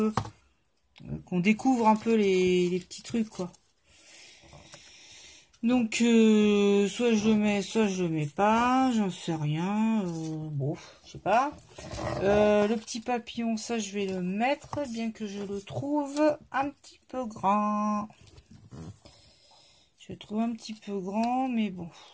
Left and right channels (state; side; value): identical; both; correlation 1.00